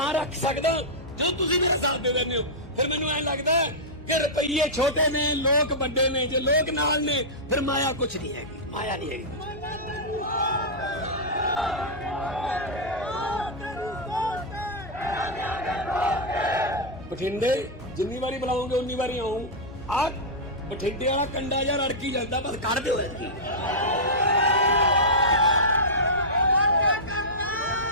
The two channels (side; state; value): both; normal; correlation -0.11